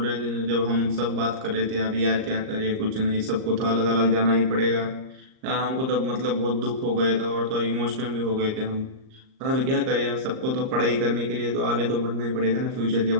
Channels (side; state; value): left; late; 38 ms